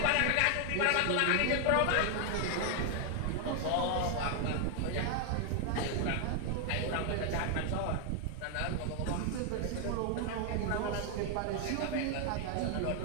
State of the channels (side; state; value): both; different; correlation 0.00